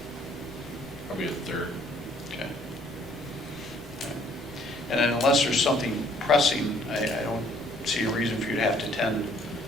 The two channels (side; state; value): both; normal; correlation 0.62